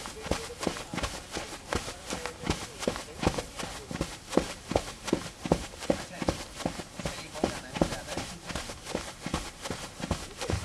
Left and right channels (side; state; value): both; identical; correlation 1.00